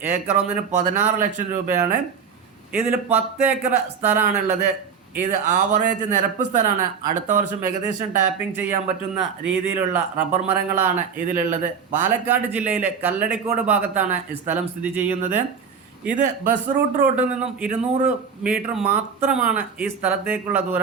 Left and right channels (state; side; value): quieter; left; 6.4 dB